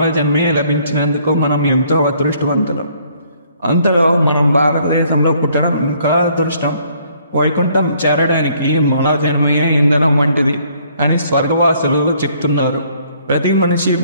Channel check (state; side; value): inverted; both; correlation -0.64